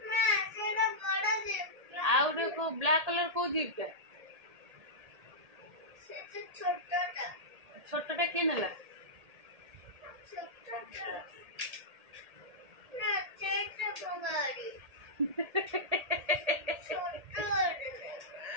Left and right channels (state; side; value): late; left; 1.8 ms